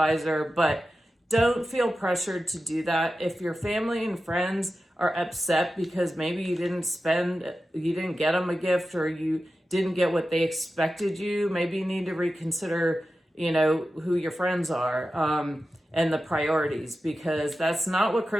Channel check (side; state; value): both; normal; correlation 0.93